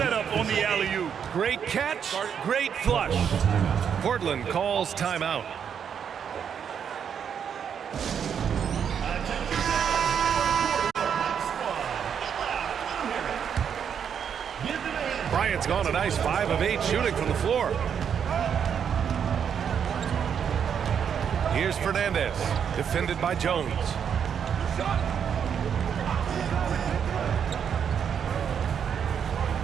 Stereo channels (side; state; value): left; quieter; 7.8 dB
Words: on the alley-oop. Great catch, great flush. Portland calls timeout. Bryant's gone a nice 5 of 8 shooting from the floor. Here's Fernandez, defended by Jones.